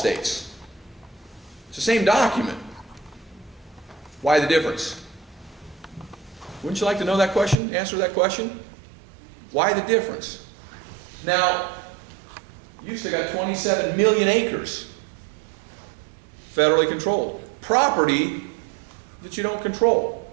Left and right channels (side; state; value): left; drops out; at 7.6 s